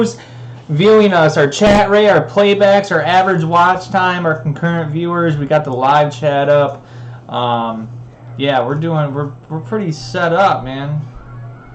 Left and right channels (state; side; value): identical; both; correlation 1.00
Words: viewing us, our chat rate, our playbacks, our average watch time, our concurrent viewers. We got the live chat up. Yeah, we're pretty set up, man.